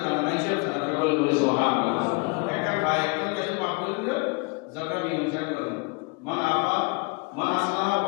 জানে না হিসাব ছাড়া সকলে বলে সুবহানাল্লাহ। একটা ভাই একটা বেশি মাফ করে দিল যখন মীমাংসা করেন মান আফা মান আসলাহ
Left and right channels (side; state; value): right; quieter; 31.3 dB